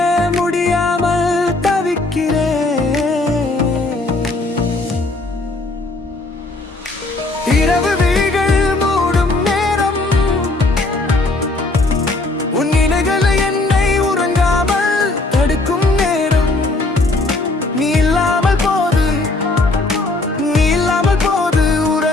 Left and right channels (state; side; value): quieter; right; 3.1 dB